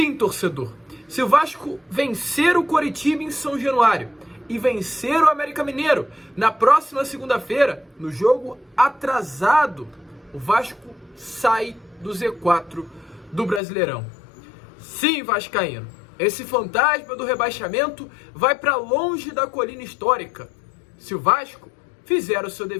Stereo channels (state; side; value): drops out; right; at 13.6 s